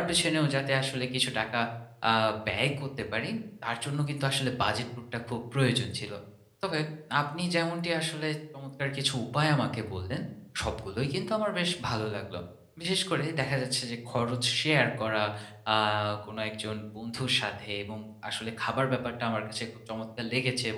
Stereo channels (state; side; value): identical; both; correlation 1.00